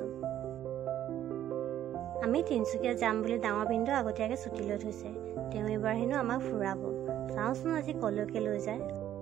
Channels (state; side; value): quieter; left; 11.6 dB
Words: আমি তিনচুকীয়া যাম বুলি ডাঙৰ বিন্দু আগতীয়াকৈ ছুটি লৈ থৈছে তেওঁ এবাৰ হেনো আমাক ফুৰাব চাওঁচোন আজি কলৈকে লৈ যায়